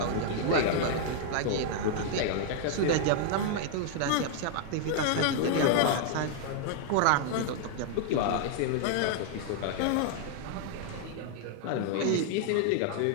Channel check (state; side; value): different; both; correlation 0.00